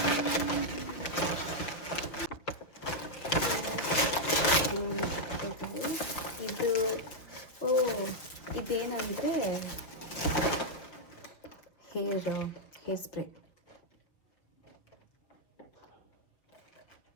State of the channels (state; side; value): late; right; 5.6 ms